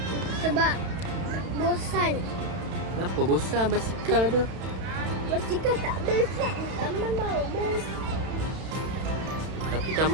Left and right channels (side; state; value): left; late; 32 ms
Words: Sebab bosan. Kenapa bosan basikal ada? Basikal tak best kan? Taman baru best. Tapi